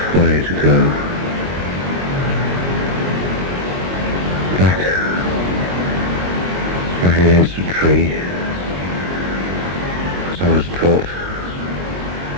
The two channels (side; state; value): left; late; 22 ms